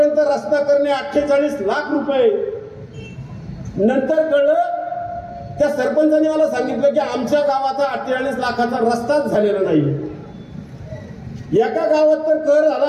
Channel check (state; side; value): identical; both; correlation 1.00